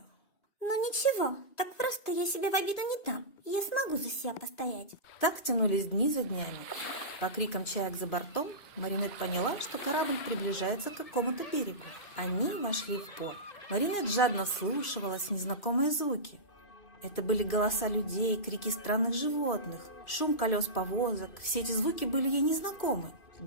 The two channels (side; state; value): right; late; 2.5 ms